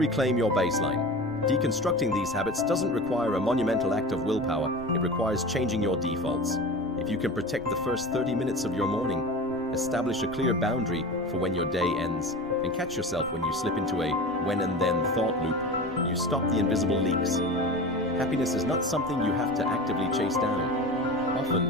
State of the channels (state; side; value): noise; right; rumble, 22 dB below the sound